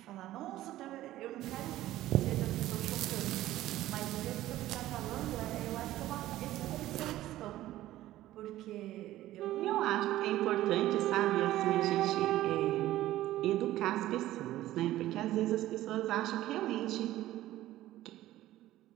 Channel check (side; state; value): left; quieter; 14.9 dB